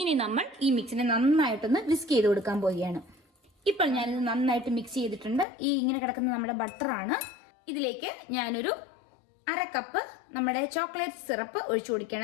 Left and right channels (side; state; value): right; drops out; at 5.5 s